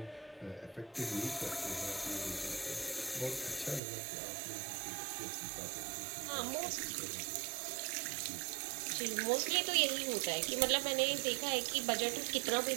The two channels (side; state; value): left; drops out; at 3.8 s